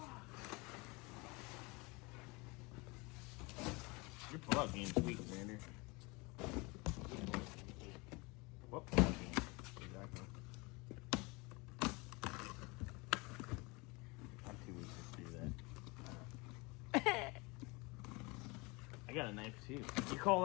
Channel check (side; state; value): right; quieter; 26.3 dB